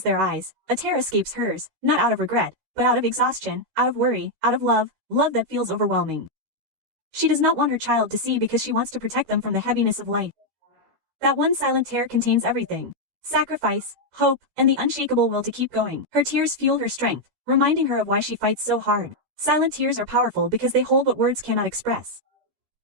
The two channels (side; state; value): left; late; 13 ms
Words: their eyes, a tear escapes hers, not out of regret, but out of exhaustion, out of worry, out of love that feels overwhelming. She does not want her child to see because she wants to protect them from the heaviness of life. That one silent tear contains everything: sacrifice, hope, and the unshakable will to keep going. Her tears fuel her strength, reminding her of why she fights so hard. Silent tears are powerful because they hold what words cannot express.